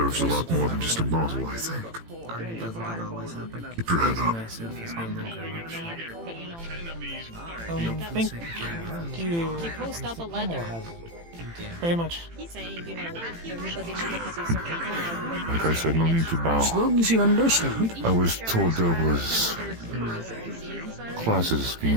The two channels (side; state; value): left; late; 18 ms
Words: a lot more than just a bottle, I think. Keep your head up. Thank you Post up a letter very much. saying, everybody needs a certain time. Like I said, no need to bow. As long as you understand. I was told there was classes